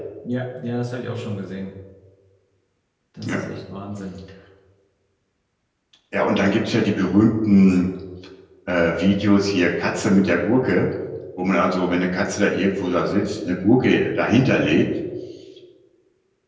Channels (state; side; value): identical; both; correlation 1.00